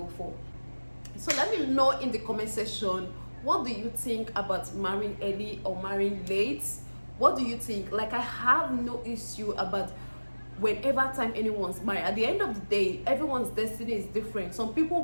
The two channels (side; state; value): both; inverted; correlation -1.00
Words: for. So let me know in the comment section, what do you think about marrying early or marrying late? What do you think? Like, I have no issue about whenever time anyone's married. At the end of the day, everyone's destiny is different. Some